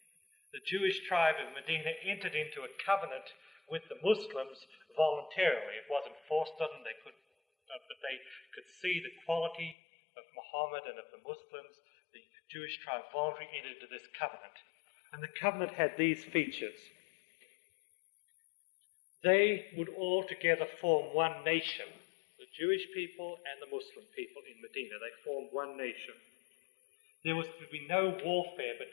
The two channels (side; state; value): right; drops out; at 9.8 s